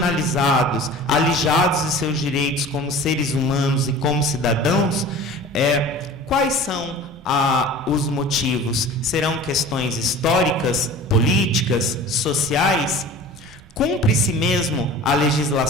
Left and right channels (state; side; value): normal; both; correlation 0.40